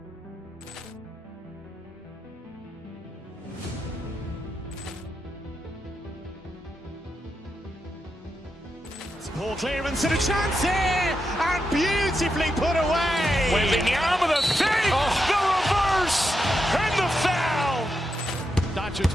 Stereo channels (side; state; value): both; normal; correlation 0.86